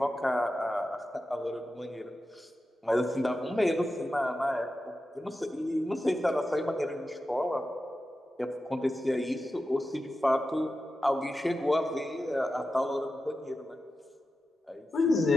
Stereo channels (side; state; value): both; normal; correlation 0.92